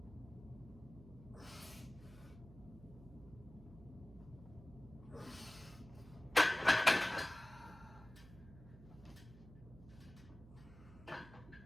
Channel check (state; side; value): noise; right; hum, 18 dB below the sound